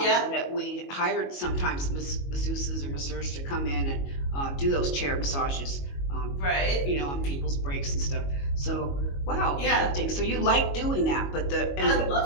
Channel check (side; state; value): right; late; 22 ms